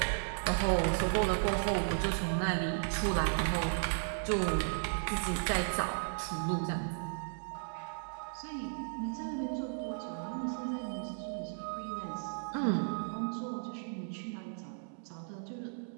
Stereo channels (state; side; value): silent; left; digital silence